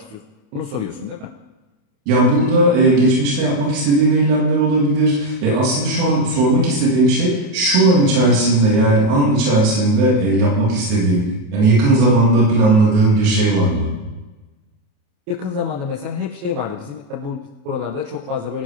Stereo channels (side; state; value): left; late; 28 ms